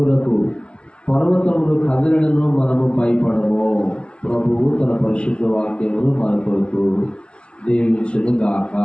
పర్వతములు కదిలినను మనము భయపడము. ప్రభువు తన పరిశుద్ధ వాక్యమును మన కొరకు దీవించును గాక.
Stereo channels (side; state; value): right; late; 0.059 ms